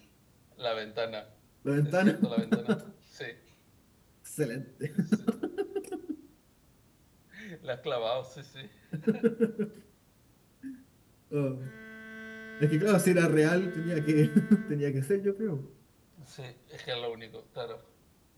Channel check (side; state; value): both; identical; correlation 1.00